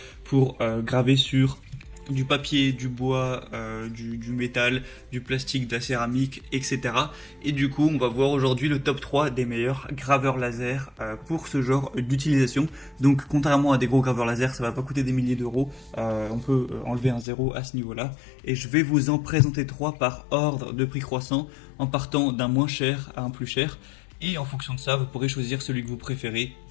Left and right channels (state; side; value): drops out; right; at 17.2 s